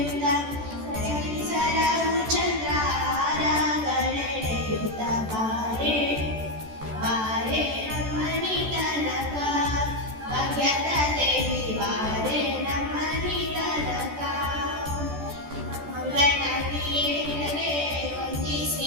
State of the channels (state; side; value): late; left; 14 ms